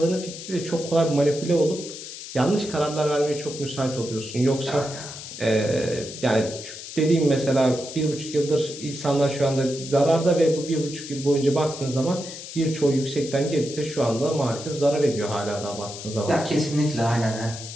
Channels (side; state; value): left; noise; hiss, 11 dB below the sound